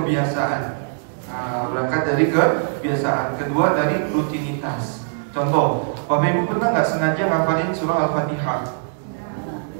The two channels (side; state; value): left; silent; digital silence